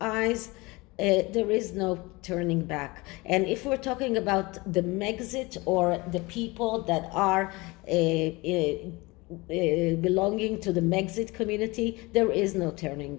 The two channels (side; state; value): right; quieter; 23.7 dB